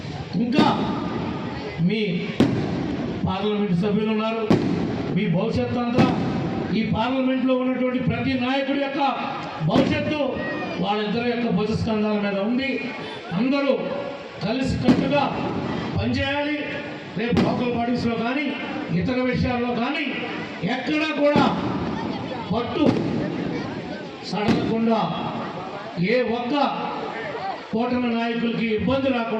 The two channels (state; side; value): identical; both; correlation 1.00